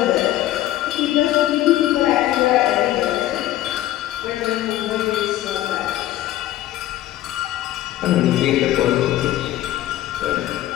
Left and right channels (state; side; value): quieter; right; 14.2 dB